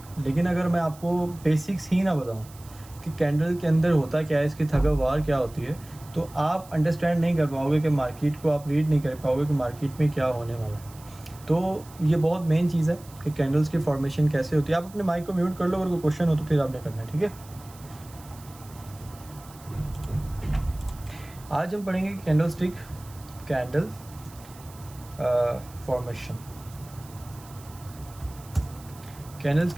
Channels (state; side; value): noise; right; hiss, 22 dB below the sound